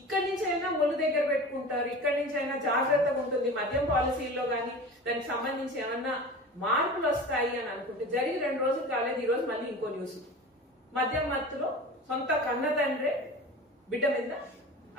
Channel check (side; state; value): both; normal; correlation 0.35